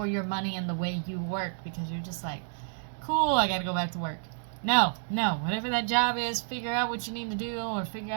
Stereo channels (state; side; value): silent; left; digital silence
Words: your money and the way you work, because you're just like, cool, I got to go back to work. No, whatever that job is, figure out what you need to do, or figure